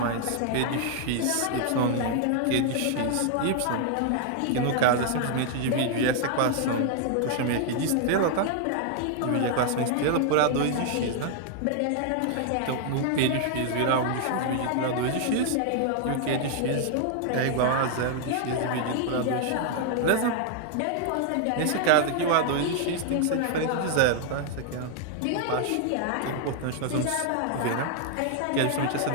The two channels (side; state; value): both; different; correlation 0.00